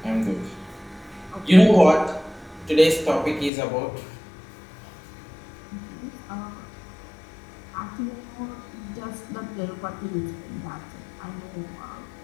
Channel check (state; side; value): drops out; right; at 3.5 s